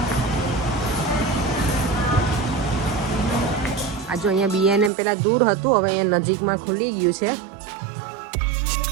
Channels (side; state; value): left; drops out; at 4.9 s